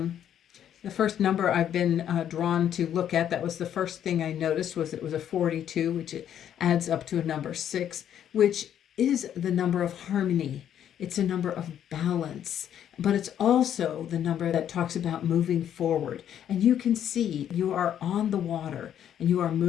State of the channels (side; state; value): right; quieter; 9.9 dB